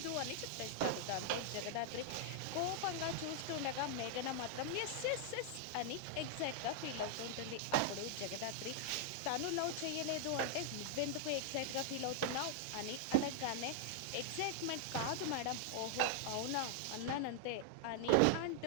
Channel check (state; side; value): different; both; correlation -0.01